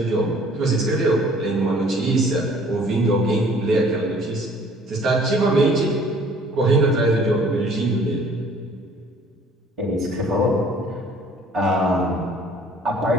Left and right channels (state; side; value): normal; both; correlation 0.55